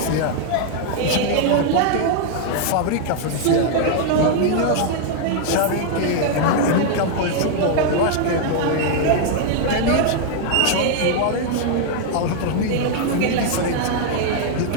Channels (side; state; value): both; different; correlation 0.00